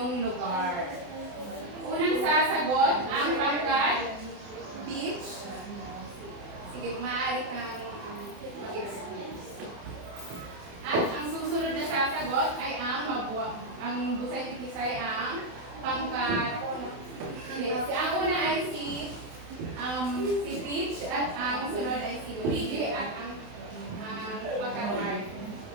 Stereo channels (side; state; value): left; late; 27 ms